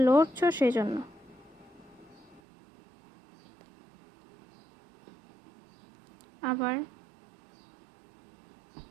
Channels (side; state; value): left; drops out; at 2.4 s